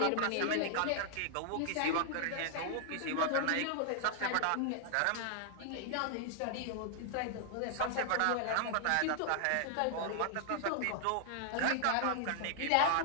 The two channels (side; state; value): both; different; correlation -0.01